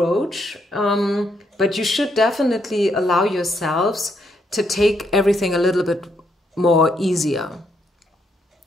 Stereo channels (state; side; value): normal; both; correlation 0.76